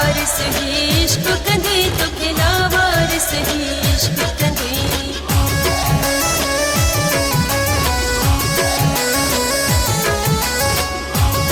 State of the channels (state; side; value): identical; both; correlation 1.00